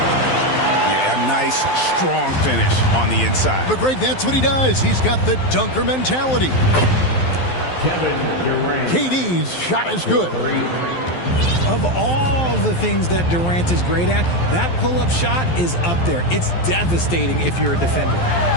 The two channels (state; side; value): late; right; 12 ms